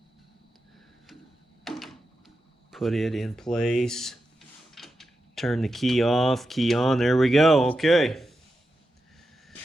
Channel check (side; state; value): both; normal; correlation 0.89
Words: Put it in place. Turn the key off, key on. There we go. Okay.